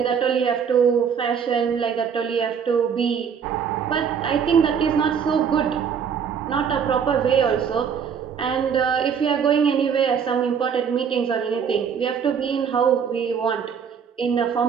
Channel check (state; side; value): quieter; left; 7.1 dB